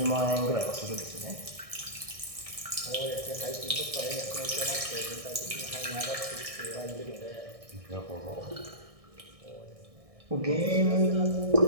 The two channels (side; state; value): left; late; 1.6 ms